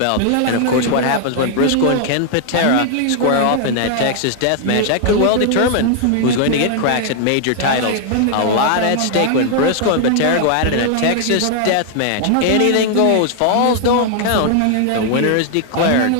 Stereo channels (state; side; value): different; both; correlation 0.00